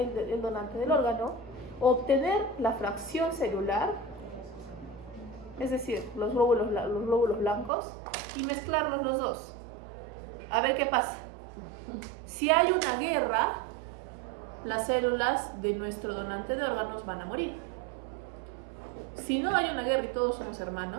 del órgano, obtener la fracción celular, es decir, los glóbulos blancos, y mezclarlos los dos. A ver qué pasa. Si hay una guerra, las células de nuestro donante de órganos van a morir. Si no hay una guerra y todos somos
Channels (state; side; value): drops out; left; at 7.7 s